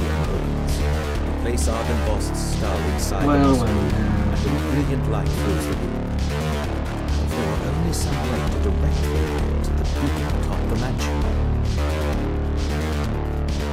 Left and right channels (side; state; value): both; identical; correlation 1.00